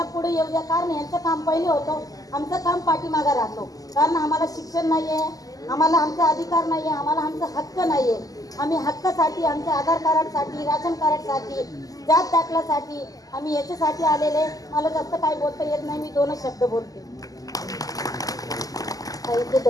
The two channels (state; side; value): late; right; 0.17 ms